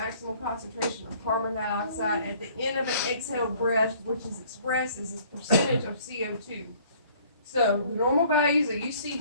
concentration of carbon dioxide at the end of an exhaled breath, which is expressed as a percentage of CO2. So the normal values that you see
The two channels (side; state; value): both; inverted; correlation -0.56